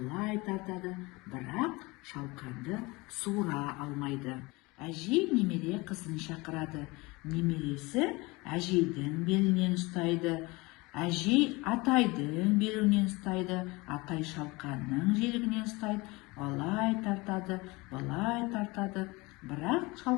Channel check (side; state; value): right; quieter; 23.8 dB